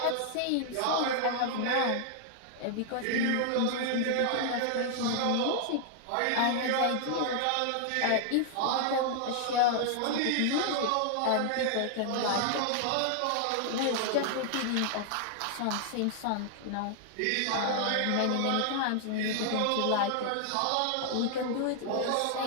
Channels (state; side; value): different; both; correlation 0.00